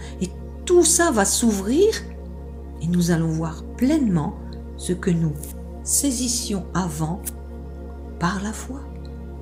Et tout ça va s'ouvrir et nous allons voir pleinement ce que nous saisissions avant par la foi.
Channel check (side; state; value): both; identical; correlation 1.00